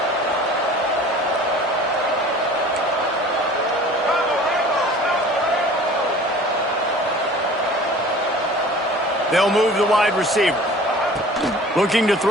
They'll move the wide receiver. Looking to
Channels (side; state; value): both; normal; correlation 0.45